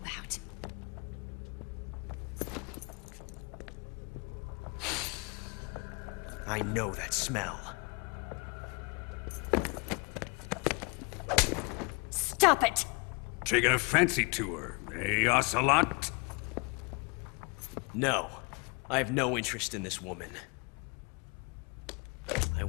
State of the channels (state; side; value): quieter; right; 31.3 dB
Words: I know that smell. Stop it! Taking a fancy to her, eh, Ocelot? No. I have no interest in this woman. I